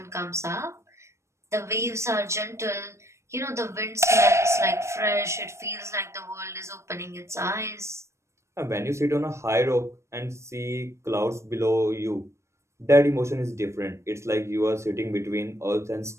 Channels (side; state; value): left; late; 0.13 ms